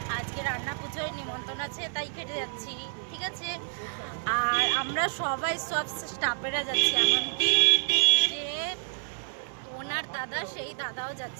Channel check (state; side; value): silent; left; 59 dB below the other